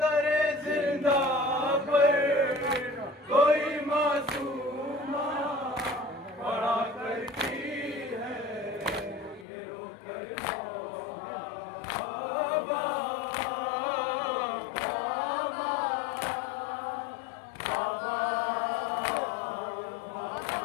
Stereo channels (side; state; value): right; drops out; at 9.5 s